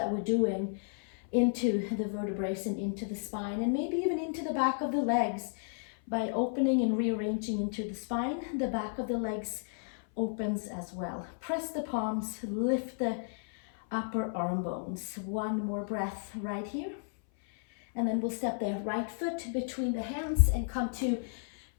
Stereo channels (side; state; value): right; silent; 56 dB below the other